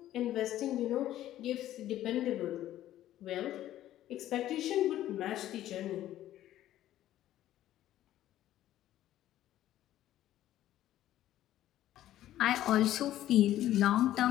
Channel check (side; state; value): right; quieter; 13.2 dB